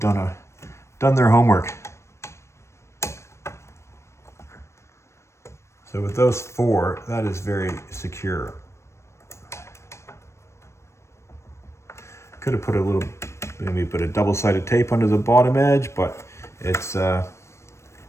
their homework. So with those 4, that is very secure. Could have put a little, maybe put a double-sided tape under the bottom edge, but it's the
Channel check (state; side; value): late; right; 0.13 ms